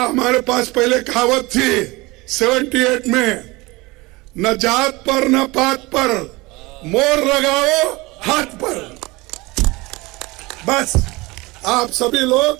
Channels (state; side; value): quieter; left; 22.7 dB